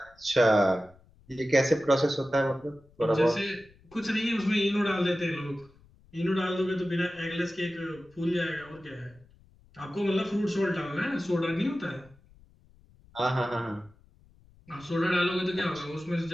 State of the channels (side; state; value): left; noise; rumble, 28 dB below the sound